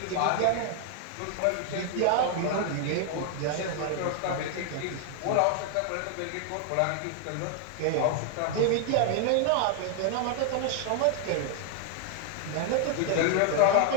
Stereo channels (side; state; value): both; different; correlation 0.00